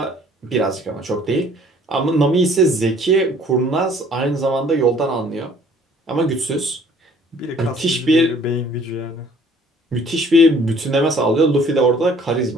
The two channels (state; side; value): normal; both; correlation 0.56